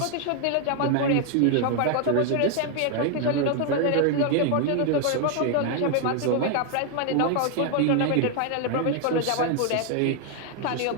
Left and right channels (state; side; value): different; both; correlation 0.01